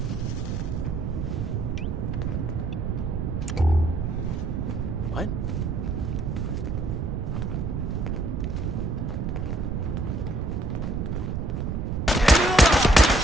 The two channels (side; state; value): right; noise; rumble, 2 dB below the sound